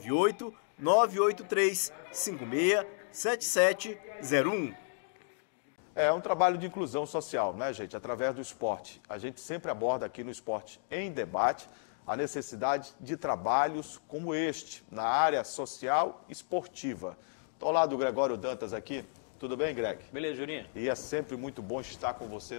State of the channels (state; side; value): silent; right; digital silence